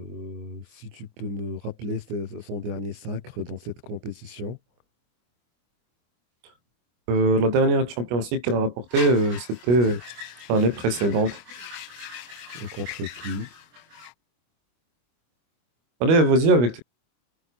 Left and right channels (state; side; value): late; left; 24 ms